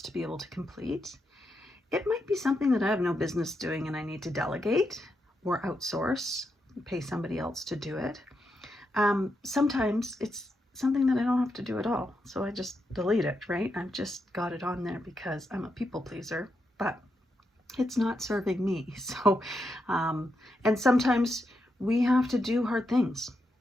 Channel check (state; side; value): normal; both; correlation 0.84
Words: to be able to complete. It might be something that I have no business doing and I need to delegate or outsource, pay somebody else to do it. Sometimes it's something that I don't have to do at all. So I just delete it, right? I've just got it on there because I'm a people pleaser, but it's not serving me. So, and sometimes we have to do hard things,